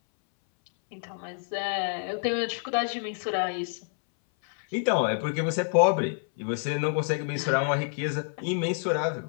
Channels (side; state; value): right; silent; 60 dB below the other